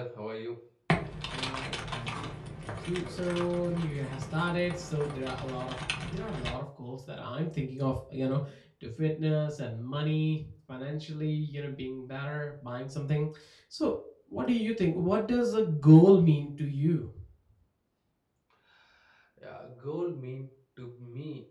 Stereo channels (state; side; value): identical; both; correlation 1.00